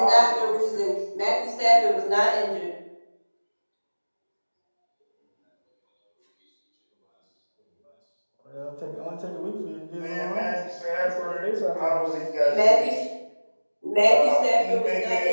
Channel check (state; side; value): inverted; both; correlation -1.00